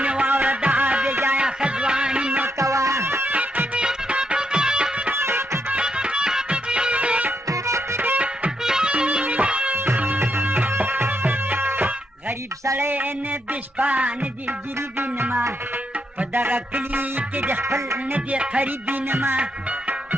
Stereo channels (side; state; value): both; normal; correlation 0.79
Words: مې واوره دا بې ځایه ښځواني مه کوه غریب سړی نه د شپه نه د ګریبي نما په دغه کلي کې د خپل نه د قریبي نما